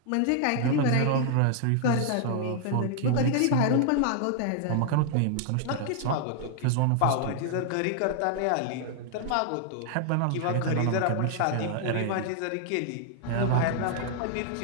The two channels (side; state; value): both; different; correlation 0.00